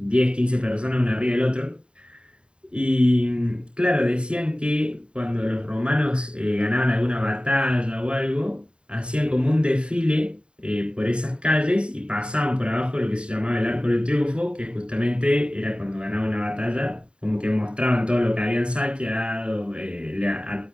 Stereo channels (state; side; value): late; left; 0.053 ms